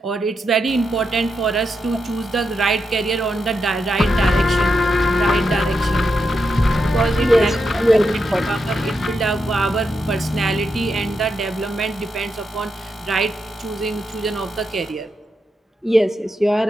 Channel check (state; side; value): normal; both; correlation 0.85